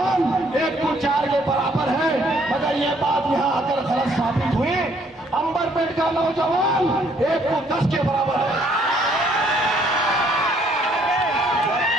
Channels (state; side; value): normal; both; correlation 0.65